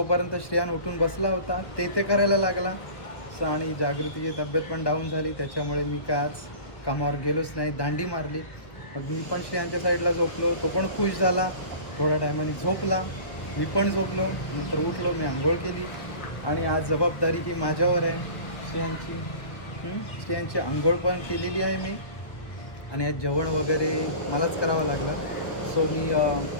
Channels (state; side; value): late; right; 1.3 ms